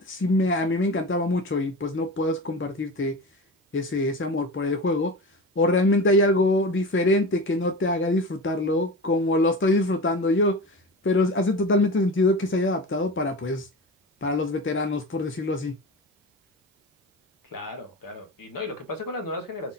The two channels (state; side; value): normal; both; correlation 0.29